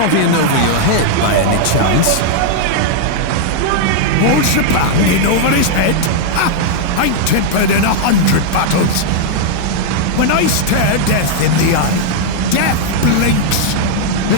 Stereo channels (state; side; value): different; both; correlation 0.00